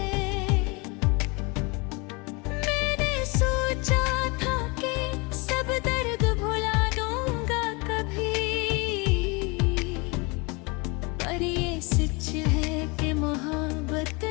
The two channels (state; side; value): quieter; right; 28.4 dB